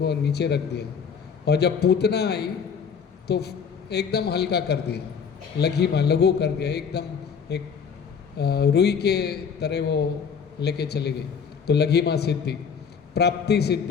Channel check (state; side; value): quieter; right; 6.6 dB